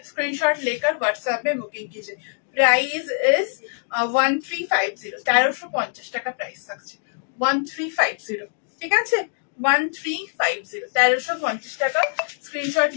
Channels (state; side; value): silent; right; digital silence